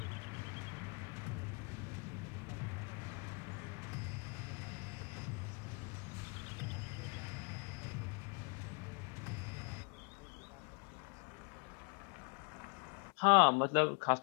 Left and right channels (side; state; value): right; quieter; 36.3 dB